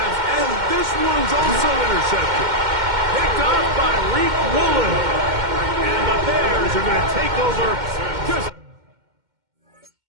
and this one's also intercepted. Picked off by Reek Woolen. And the Bears are going to take over just...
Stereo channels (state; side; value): late; left; 2.1 ms